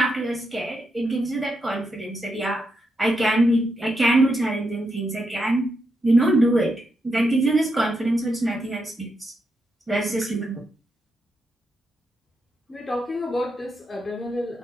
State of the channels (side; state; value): both; normal; correlation 0.84